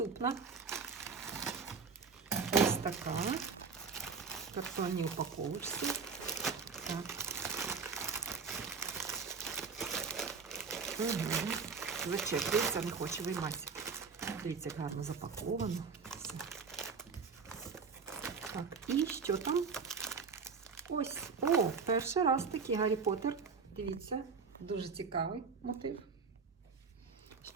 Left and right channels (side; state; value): left; quieter; 5.2 dB